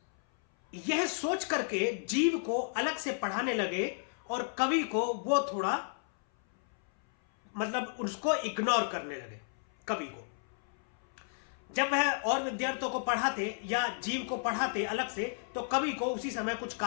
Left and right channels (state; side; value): silent; right; 56 dB below the other